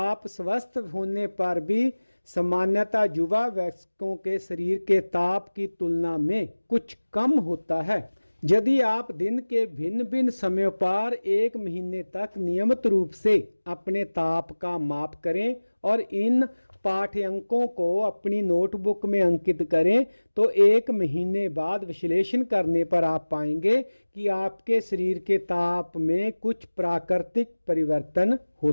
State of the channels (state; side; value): inverted; both; correlation -1.00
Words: स्वस्थ होने पर भी सामान्यतः युवा वयस्कों के शरीर के ताप की तुलना में कुछ कम होता है। यदि आप दिन के भिन्न भिन्न समयों पर 1 महीने तक नियमित रूप से अपने ताप का माप करें और इन पाठ्यांकों को अपनी नोटबुक में अंकित करें तो 1 महीने बाद विश्लेषण करने पर आप पाएंगे कि आपके शरीर के ताप में कुछ प्राकृतिक परिवर्तन